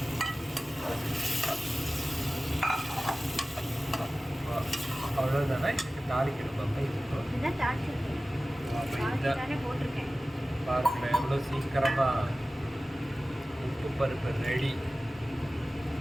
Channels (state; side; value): normal; both; correlation 0.96